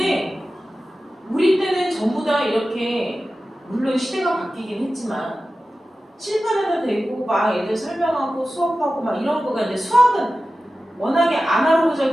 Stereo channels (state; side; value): normal; both; correlation 0.94